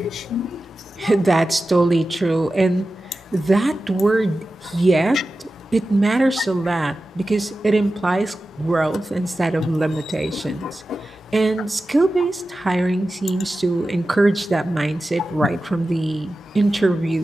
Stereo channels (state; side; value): normal; both; correlation 0.94